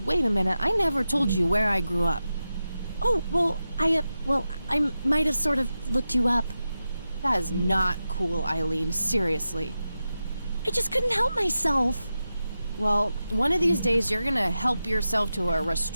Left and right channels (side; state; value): both; inverted; correlation -0.91